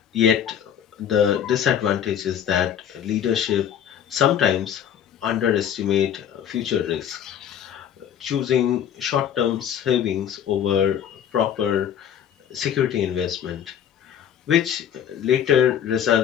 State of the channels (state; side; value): quieter; right; 9.2 dB